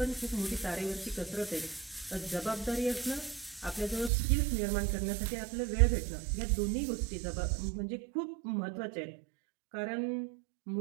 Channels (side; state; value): left; drops out; at 4.1 s